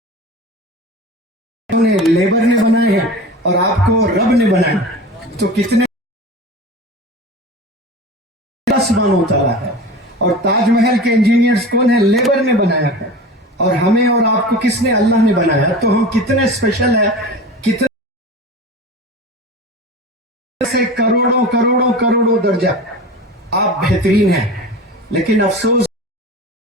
Labour نے بنائے ہیں اور آپ کو رب نے بنایا, تو کتنے سبحانہ و تعالیٰ ہے. اور تاج محل کے انجینئرز کون ہیں؟ لیبر نے بنایا ہے. اور ہمیں اور آپ کو کس نے؟ اللہ نے بنایا. تو ہم کتنے اسپیشل ہیں, کتنے سے کروڑوں کروڑوں کروڑوں درجہ آپ بہترین ہیں. لیکن افسوس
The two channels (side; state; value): both; normal; correlation 0.33